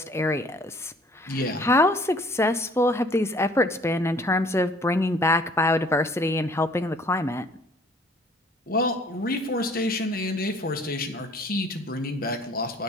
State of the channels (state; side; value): normal; both; correlation 0.55